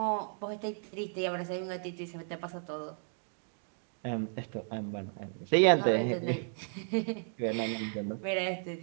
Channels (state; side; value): silent; left; 55 dB below the other